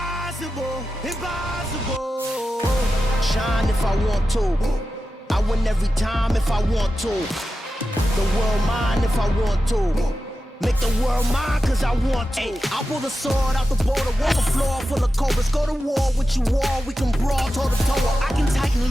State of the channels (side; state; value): both; normal; correlation 0.92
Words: impossible. Shine if I want to. I win every time if I want to. The world mine if I want to. Make the world mine cause I want to. Ay, I'll pull the sword out the border, walk the floor full of cobras. Go to war with you all, we can brawl toe to toe. I can tighten